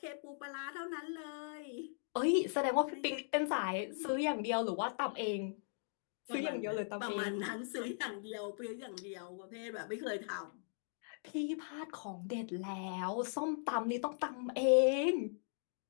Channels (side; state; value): right; silent; digital silence